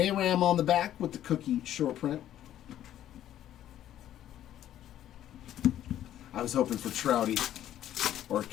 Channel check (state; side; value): quieter; right; 11.9 dB